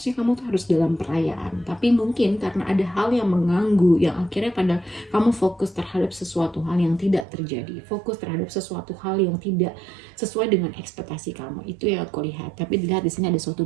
kamu tuh harus dalam perayaan, tapi mungkin karena ada hal yang mengganggu yang akhirnya pada kamu fokus terhadap sesuatu hal yang tidak terjadi, fokus terhadap sesuatu hal yang tidak sesuai dengan ekspektasi kamu. Itu yang aku lihat. Tapi dilihat di sini ada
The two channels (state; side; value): drops out; left; at 7.2 s